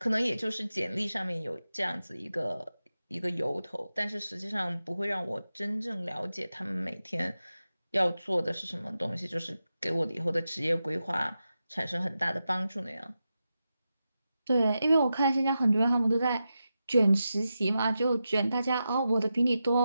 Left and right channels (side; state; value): both; inverted; correlation -0.90